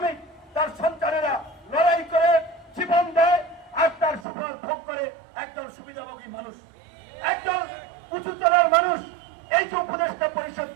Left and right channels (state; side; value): drops out; left; at 4.2 s